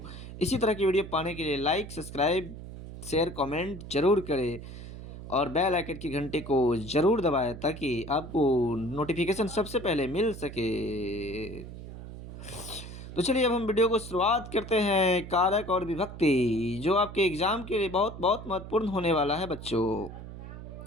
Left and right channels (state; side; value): noise; right; hum, 12 dB below the sound